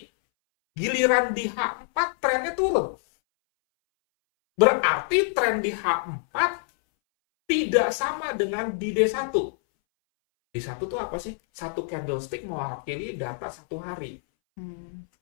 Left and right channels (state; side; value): silent; right; 61 dB below the other